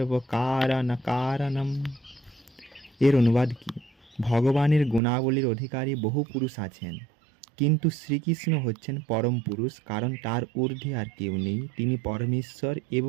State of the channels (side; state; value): left; drops out; at 5.0 s